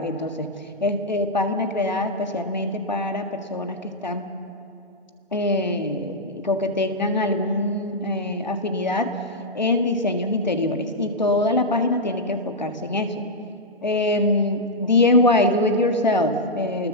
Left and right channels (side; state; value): both; normal; correlation -0.05